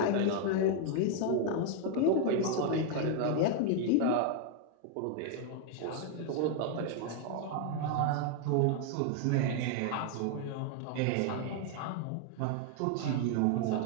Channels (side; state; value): both; different; correlation 0.00